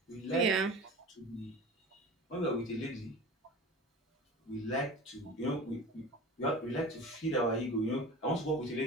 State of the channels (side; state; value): both; normal; correlation 0.36